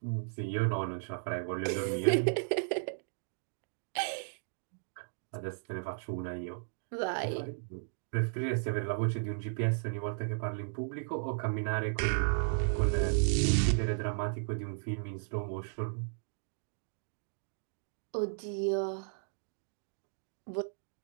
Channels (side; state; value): left; silent; digital silence